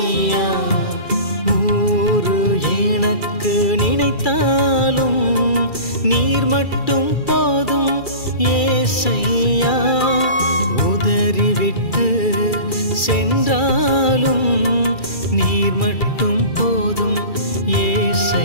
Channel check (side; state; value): right; late; 2.3 ms